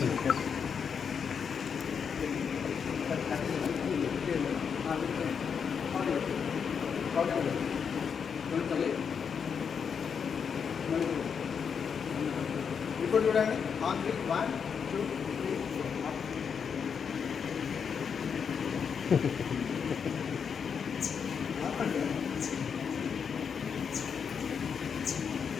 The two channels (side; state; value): right; quieter; 6.7 dB